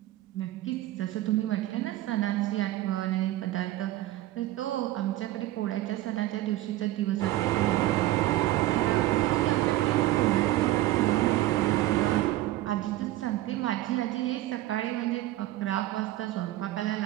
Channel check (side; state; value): left; quieter; 15.6 dB